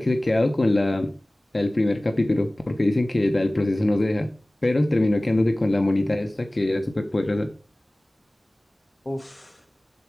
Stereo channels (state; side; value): normal; both; correlation 0.98